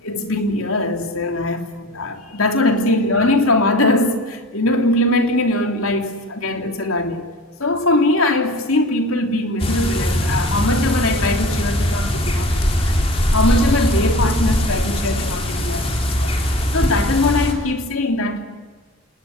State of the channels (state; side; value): normal; both; correlation 0.39